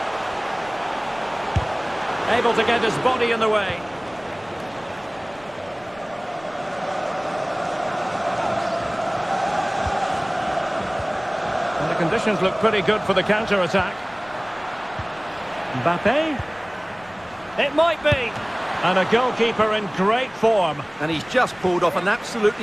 Able to get his body in the way. And the conditions look pretty good for the counter-attack. Mbappe. It might be. And a goalkeeper in great form. And he's just pulled off an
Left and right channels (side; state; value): left; noise; rumble, 25 dB below the sound